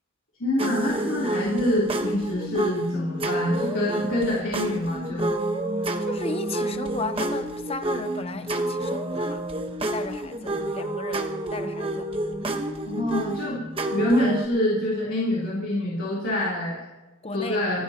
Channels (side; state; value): both; normal; correlation 0.51